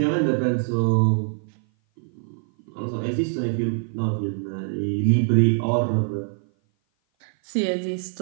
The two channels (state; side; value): silent; left; 56 dB below the other